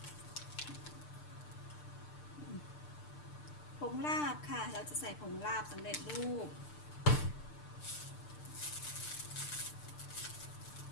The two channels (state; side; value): late; right; 6.7 ms